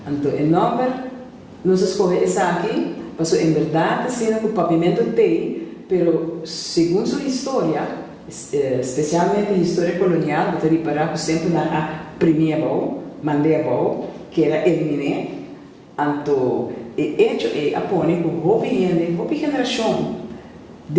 Então, em nome, nós escolhemos essa aqui, porque em verdade, assim, que o papiamento tem, mas segundo sua história, especialmente a história colonial, você reparar que sempre na primeira volta, que era eliminar, então, e hecho é apone que a geração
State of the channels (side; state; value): both; identical; correlation 1.00